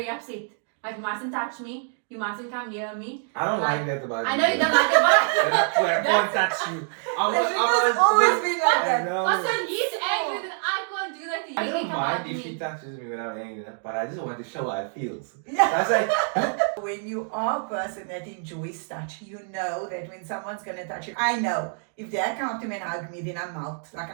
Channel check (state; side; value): silent; left; 60 dB below the other